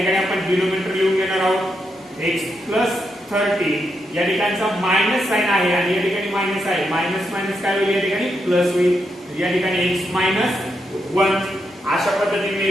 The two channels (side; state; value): both; normal; correlation 0.82